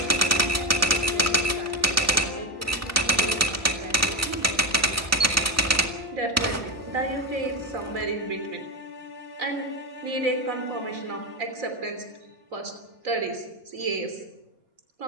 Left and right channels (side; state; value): both; normal; correlation 0.12